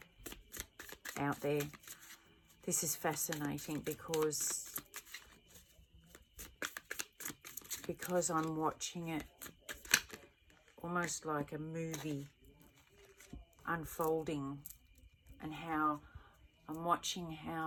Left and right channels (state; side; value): identical; both; correlation 1.00